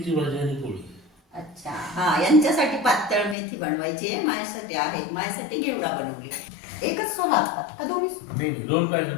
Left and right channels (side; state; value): right; drops out; at 3.4 s